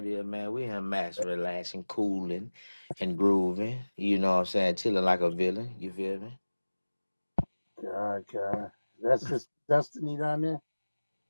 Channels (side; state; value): both; inverted; correlation -1.00